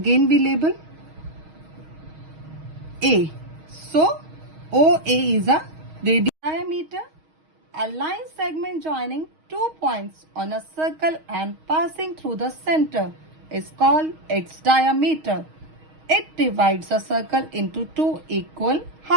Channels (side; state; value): left; late; 6.4 ms